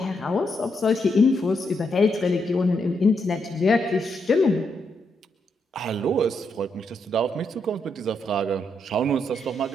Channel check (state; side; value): normal; both; correlation 0.80